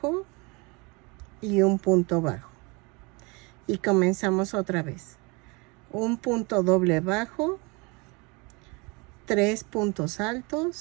y un punto bajo. Y comenzamos otra vez. Un punto doble bajo, 3 puntos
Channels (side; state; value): left; quieter; 28.3 dB